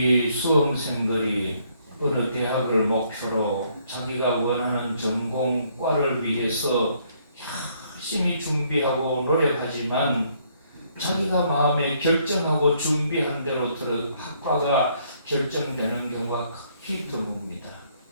수험생들이 어느 대학을 목표로 자기가 원하는 전공과를 위해서 열심히 준비하고 노력하지만 자기가 마음에 결정하고 준비한 대로 학과가 결정되는 경우가 극히 드뭅니다.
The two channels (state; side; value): inverted; both; correlation -0.68